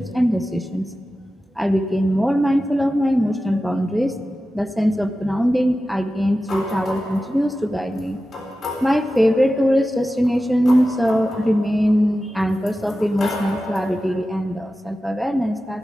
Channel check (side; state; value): both; normal; correlation 0.93